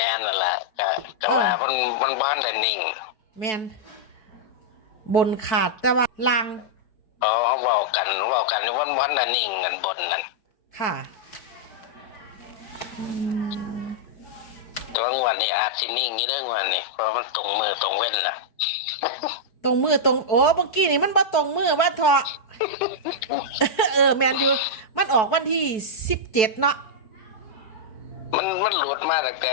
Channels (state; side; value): late; right; 4.6 ms